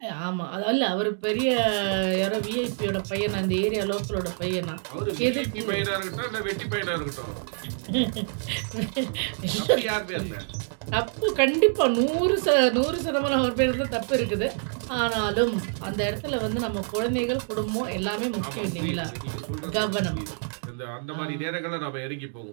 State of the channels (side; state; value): left; silent; 60 dB below the other